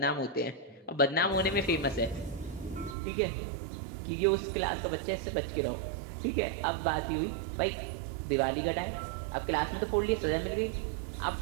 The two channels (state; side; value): drops out; left; at 3.0 s